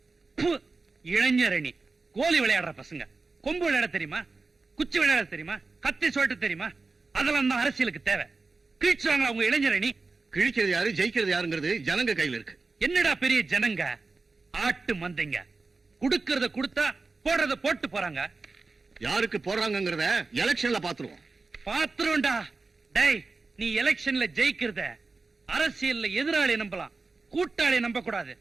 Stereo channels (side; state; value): left; quieter; 3.9 dB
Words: இளைஞரணி கோலி விளையாடுற பசங்க. கொம்பு விளையாட தெரியுமா? குச்சி விளையாட தெரியுமா? கத்தி சொல்லிட்டு தெரியுமா? அதெல்லாம் தான் அரசியலுக்கு தேவை. கிழிச்சாங்க அவங்க இளைஞரணி. கிழிக்கிறது யாரு, ஜெயிக்கிறது யாருங்கிறது ஜனங்க கையில இருக்கு. என்னடா பெரிய ஜனங்க? ஆட்டு மந்தைங்க. குடுக்கறத கொடுத்தா போடுறத போட்டு போறாங்க. யாருக்கு போடுறாங்கிறத எலெக்ஷன்ல பாத்துருவோம். பாத்துருவோம்டா. டேய், நீ எலெக்ஷன்ல ஜெயிக்கிறத அரசியல்ல எதிராளி நம்பலாம், கூட்டாளி நம்ப கூடாது.